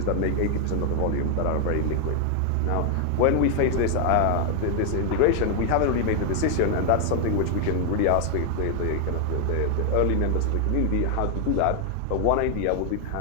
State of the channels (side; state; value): both; different; correlation 0.00